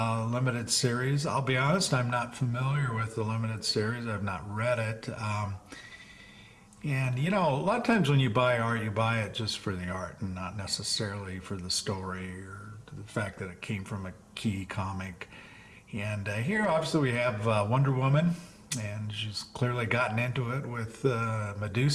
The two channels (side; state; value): both; identical; correlation 1.00